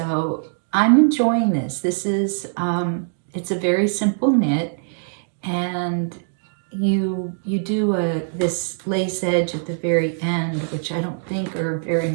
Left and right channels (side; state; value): left; silent; digital silence